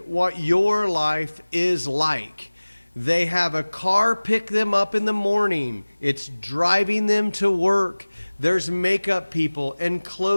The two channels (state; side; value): inverted; both; correlation -1.00